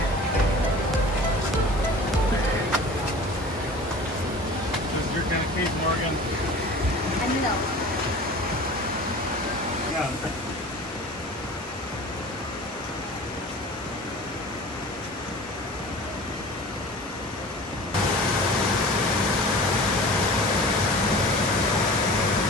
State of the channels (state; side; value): normal; both; correlation 0.40